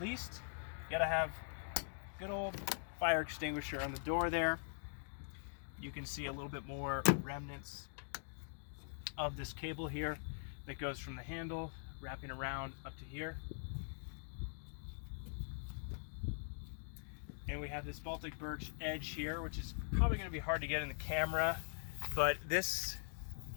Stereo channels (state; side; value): silent; right; digital silence